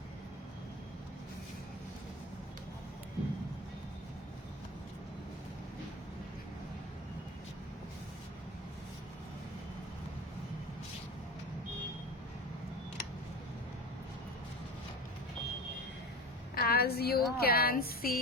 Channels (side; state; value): both; normal; correlation 0.30